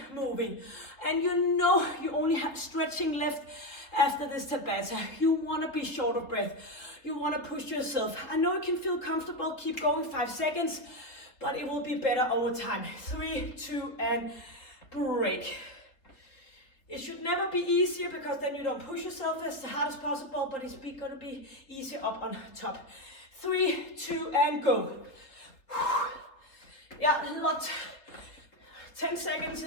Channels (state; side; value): late; right; 3.6 ms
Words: moving. And you only have stretching left after this Tabata. You want to be short of breath. You want to push yourself. I know it can feel comfortable. Keep going, 5 seconds, but it will be better over time. 3, 2, and break. It should never be easier, because then you don't push yourself as hard as possible, but it's going to be easier up on top. 3, 2, and go. Yeah, a lot. 10 seconds